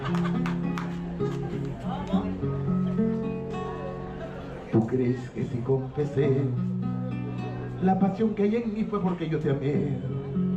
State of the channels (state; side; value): identical; both; correlation 1.00